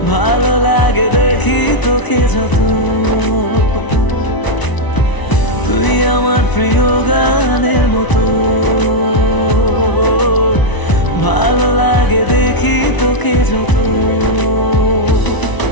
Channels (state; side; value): late; right; 1.0 ms